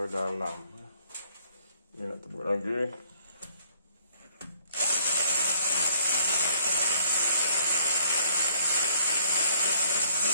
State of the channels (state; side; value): inverted; both; correlation -0.61